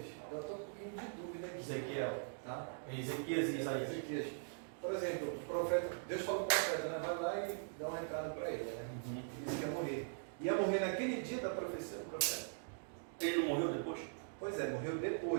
eu estou um pouquinho de dúvida aqui. Ezequiel. Tá? Ezequias e Isaías. Ezequias. Por exemplo, o profeta, Deus falou para o profeta, né? Vai lá e dá um recado para ele, né? Ele disse que ia morrer. Ia morrer naquele dia da profecia do profeta. Ele não morreu depois? Pois é, morreu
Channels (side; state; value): left; silent; digital silence